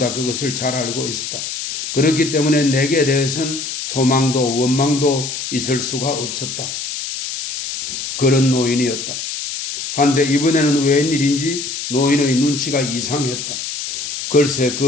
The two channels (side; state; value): left; noise; hiss, 6 dB below the sound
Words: 그것을 잘 알고 있었다. 그렇기 때문에 내게 대해서는 소망도 원망도 있을 수가 없었다. 그런 노인이었다. 한데 이번에는 웬일인지 노인의 눈치가 이상했다. 글쎄